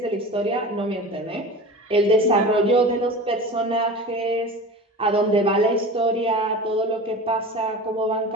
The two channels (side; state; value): both; normal; correlation 0.34